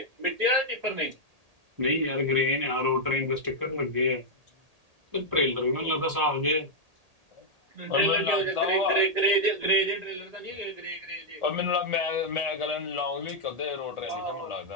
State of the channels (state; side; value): late; left; 1.8 ms